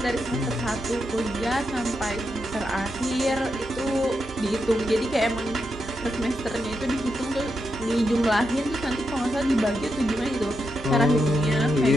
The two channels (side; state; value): both; normal; correlation 0.84